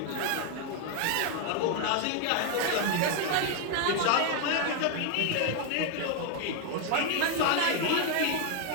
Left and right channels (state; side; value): different; both; correlation 0.01